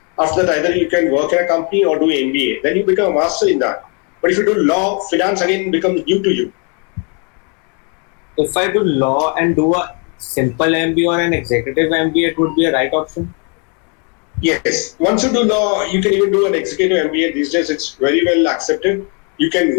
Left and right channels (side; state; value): right; quieter; 36.3 dB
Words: After that, either you can work in a company or do MBA. Then you become a master in that. But if you do law, finance again becomes new to you. If I do law and do a simple MBA or an executive MBA, it would be a right option? Yes. Once you do law, you can even do an executive MBA. These days, it's very well accepted. You can